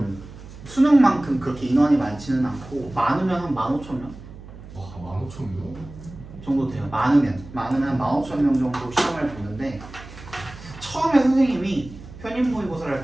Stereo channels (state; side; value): noise; right; hum, 16 dB below the sound